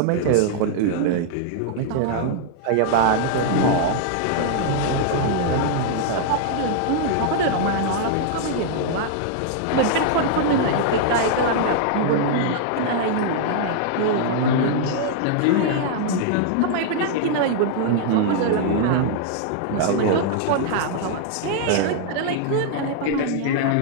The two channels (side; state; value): both; different; correlation -0.01